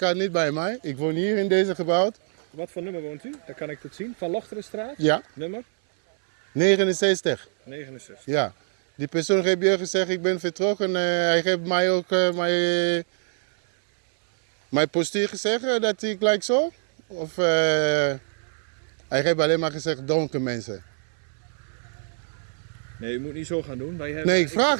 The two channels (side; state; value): left; silent; 60 dB below the other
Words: niet bij mij. Ik woon hier in deze gebouw. Wat voor nummer woont u? Dan kan ik het zien. Van Lochterenstraat? Ja, Nummer? 69. 69. Ja. Die persoon heeft je gezegd, ik ben vertrokken. Hij heeft mij ook mijn postuur gezegd dat ik gelijk zo. Of hij heeft alleen maar gezegd donker mensen. Nee, u moet niet zo gaan doen. Wij hebben, Nee, ik vraag.